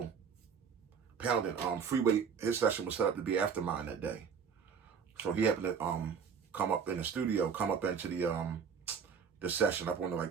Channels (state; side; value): quieter; left; 6.6 dB